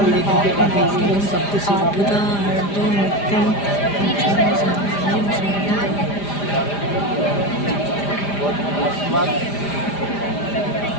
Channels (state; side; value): late; right; 5.0 ms